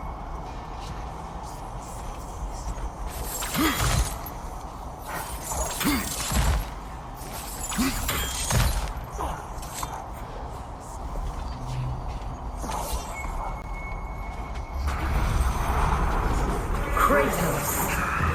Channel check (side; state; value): both; identical; correlation 1.00